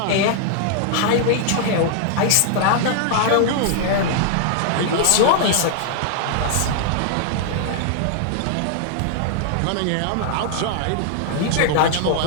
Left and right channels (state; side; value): different; both; correlation 0.00